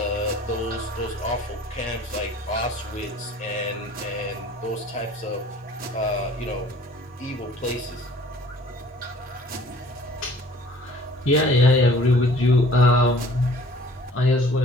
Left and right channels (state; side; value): normal; both; correlation 0.52